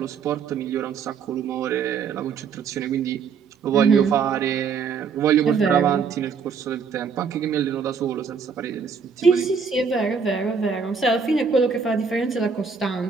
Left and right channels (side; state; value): left; quieter; 5.8 dB